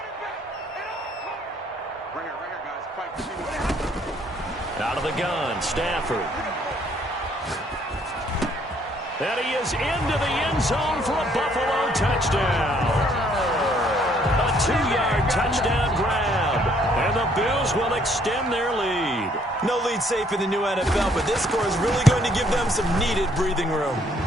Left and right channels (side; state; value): both; normal; correlation 0.65